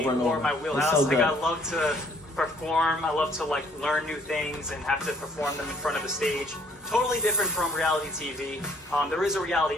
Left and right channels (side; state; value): both; normal; correlation 0.62